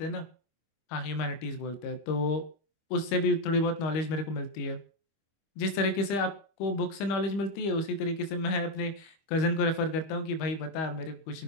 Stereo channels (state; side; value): late; right; 25 ms